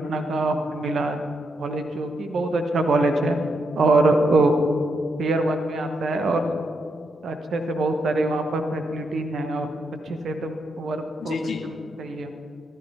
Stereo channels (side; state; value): both; normal; correlation 0.80